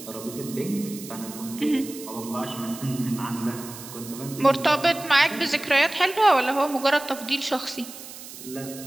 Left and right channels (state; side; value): noise; right; hiss, 14 dB below the sound